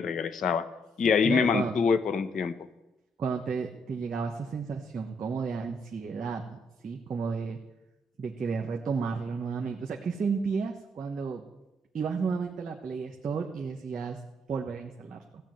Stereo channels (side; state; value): both; normal; correlation 0.73